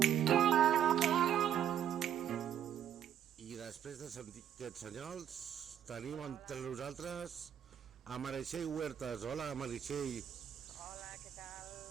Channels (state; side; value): quieter; left; 9.7 dB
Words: I després de sentir aquests senyals, tenim entre nosaltres a Meritxell Huertas. Hola, Meritxell. Hola, què tal?